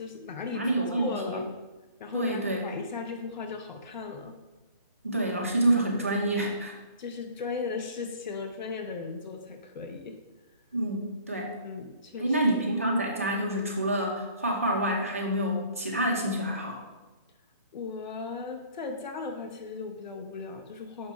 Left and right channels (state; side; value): inverted; both; correlation -0.51